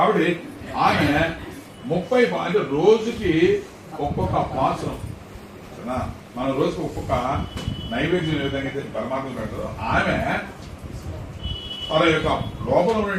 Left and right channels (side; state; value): both; identical; correlation 1.00